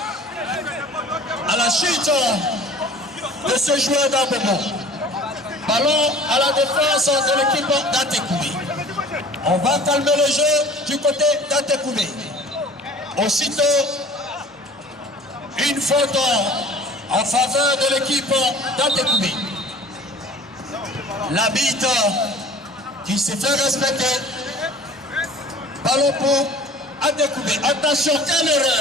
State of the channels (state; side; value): normal; both; correlation 0.46